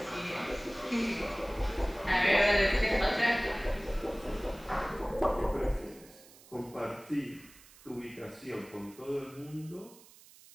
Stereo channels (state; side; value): noise; right; hiss, 23 dB below the sound